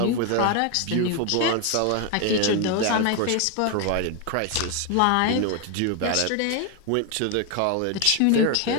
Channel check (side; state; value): both; different; correlation 0.01